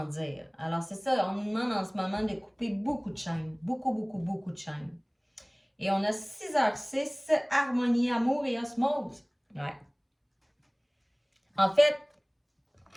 Alors c'est ça, on nous demande en ce moment de couper beaucoup de chaînes, beaucoup de chaînes. Et on a 6h06, harmonie, amour et osmose. Ouais. En fait,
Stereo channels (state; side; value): identical; both; correlation 1.00